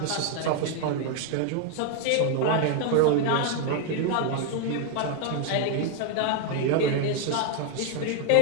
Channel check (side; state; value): both; different; correlation 0.00